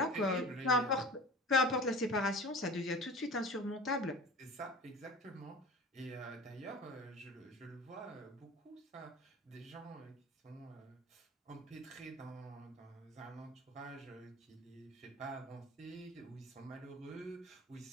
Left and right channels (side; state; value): both; normal; correlation 0.38